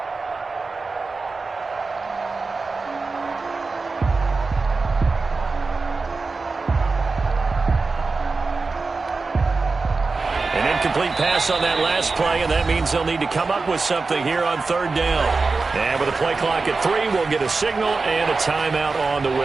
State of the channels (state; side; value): quieter; left; 4.0 dB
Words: Incomplete pass on that last play, and that means they'll need to come up with something here on 3rd down. And with a play clock at 3, we'll get a signal and a timeout on the